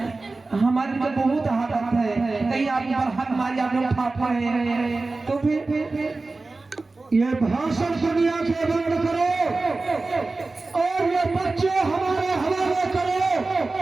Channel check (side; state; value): left; quieter; 3.5 dB